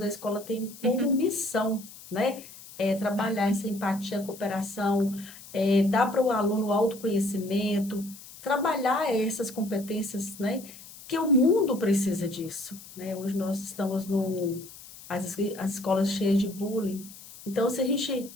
a escola tem como uhum, missão, né? trabalhar essa empatia, cooperação, dar para o aluno o autoconhecimento, trabalhar essas competências, né? Que o mundo precisa disso, né? Hoje nós estamos as escolas cheias de bullying. Então, se a gente,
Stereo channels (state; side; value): noise; left; hiss, 17 dB below the sound